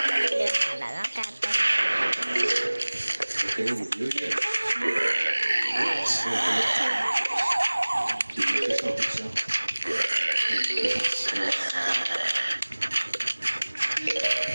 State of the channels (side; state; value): both; inverted; correlation -1.00